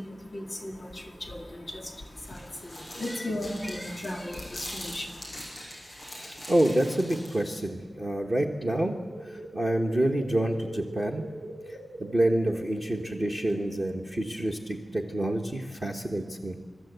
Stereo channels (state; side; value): normal; both; correlation 0.95